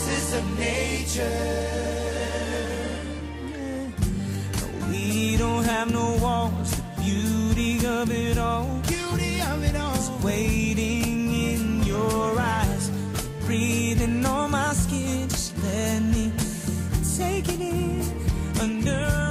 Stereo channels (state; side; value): identical; both; correlation 1.00